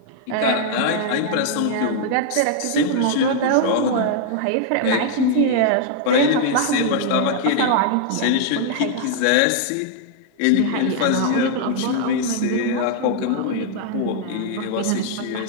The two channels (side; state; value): both; different; correlation 0.00